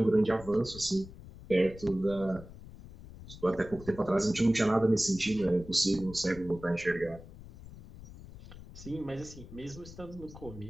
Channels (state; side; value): noise; left; rumble, 16 dB below the sound